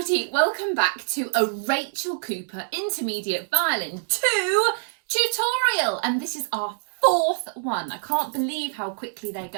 welcome back to a Rachel Cooper Intermediate Violin 2 tutorial, and this is our fourth one. I can't believe how quickly they're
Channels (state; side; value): silent; left; 62 dB below the other